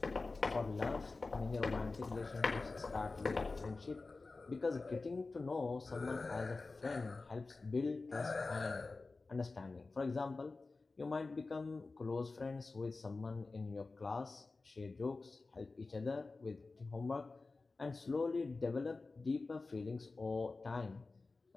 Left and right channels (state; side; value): quieter; right; 3.7 dB